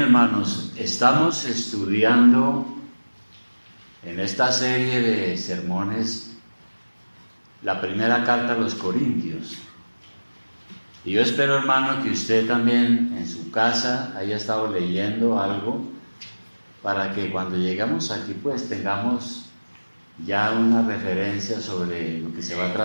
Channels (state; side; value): inverted; both; correlation -1.00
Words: hermanos, estamos estudiando en esta serie de sermones la primera carta a los Corintios. Y yo espero, hermano, que usted también en su casa haya estado leyendo algo para que cuando lleguemos aquí pues tengamos ya una referencia sobre lo que se va a